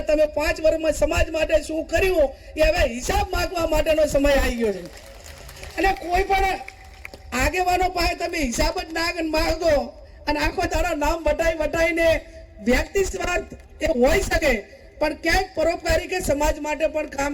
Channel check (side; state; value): both; identical; correlation 1.00